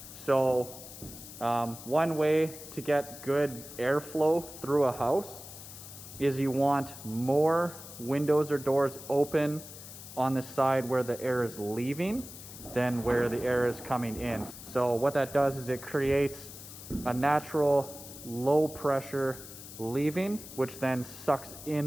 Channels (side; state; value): left; noise; hiss, 14 dB below the sound